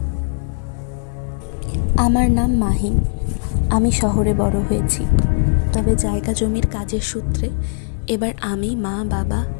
আমার নাম মাহিম। আমি শহরে বড় হয়েছি, তবে জায়গা জমির কাজের সূত্রে এবার আমি, মা, বাবা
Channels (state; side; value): silent; right; digital silence